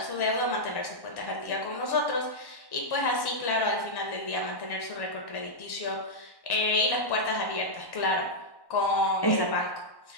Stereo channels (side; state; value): right; late; 1.1 ms